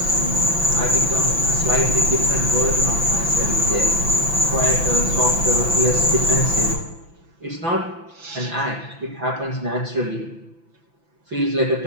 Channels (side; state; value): left; late; 5.9 ms